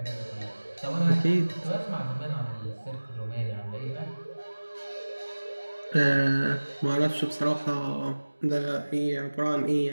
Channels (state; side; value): inverted; both; correlation -1.00